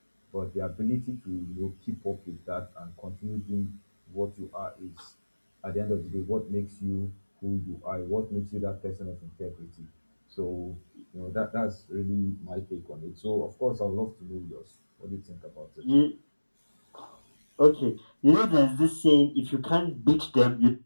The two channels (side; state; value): both; inverted; correlation -1.00